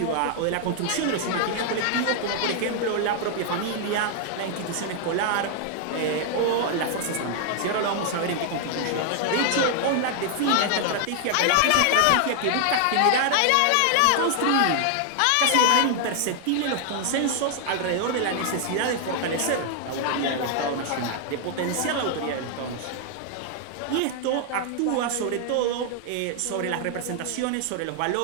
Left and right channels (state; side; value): different; both; correlation 0.00